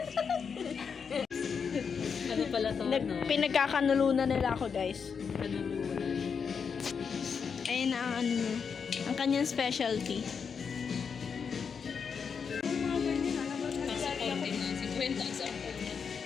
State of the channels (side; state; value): right; quieter; 6.2 dB